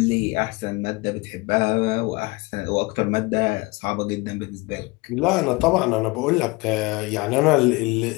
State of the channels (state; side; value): quieter; right; 24.3 dB